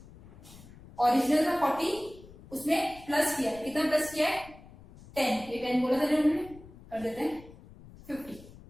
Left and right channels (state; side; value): noise; left; rumble, 20 dB below the sound